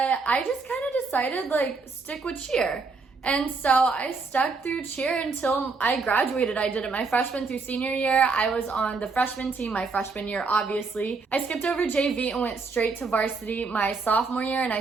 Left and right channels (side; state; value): left; quieter; 4.3 dB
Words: I just kind of decided like stick with cheer. And so I stuck through cheer until I graduated. I did it my freshman through senior year. I was on the freshman team my freshman year, obviously. I skipped over JV and went straight to varsity my sophomore year, and I